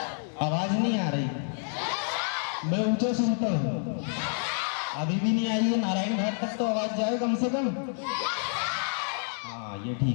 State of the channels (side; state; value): right; silent; 59 dB below the other